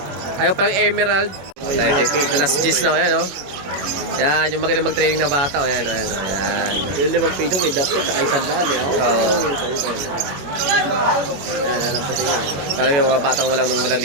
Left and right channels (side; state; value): left; late; 21 ms